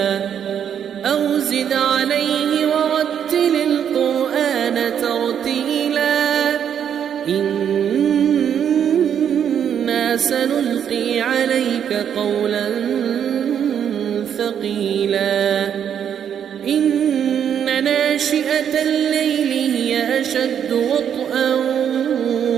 أو زد عليه ورتل القرآن ترتيلا إنا سنلقي عليك قولا ثقيلا إن ناشئة الليل هي أشد وطئا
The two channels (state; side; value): quieter; left; 8.7 dB